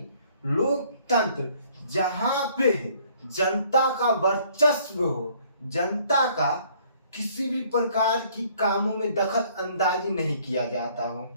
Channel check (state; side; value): inverted; both; correlation -0.61